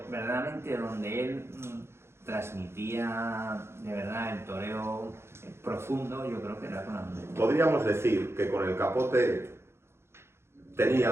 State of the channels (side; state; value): left; late; 0.12 ms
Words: verdaderamente donde él transmitía de verdad el toreo profundo, yo creo que era con la muleta. Podríamos decir que con el capote